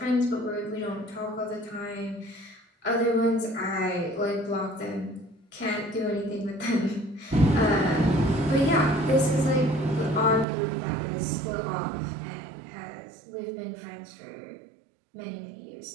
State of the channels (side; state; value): left; drops out; at 10.5 s